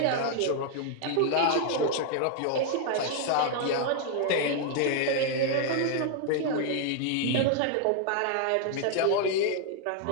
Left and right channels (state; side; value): different; both; correlation 0.00